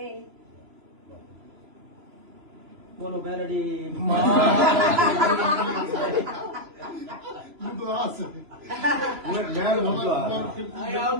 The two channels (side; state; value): left; late; 3.0 ms